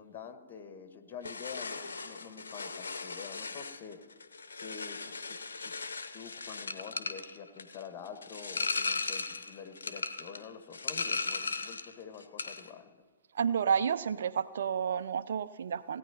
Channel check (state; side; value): inverted; both; correlation -0.73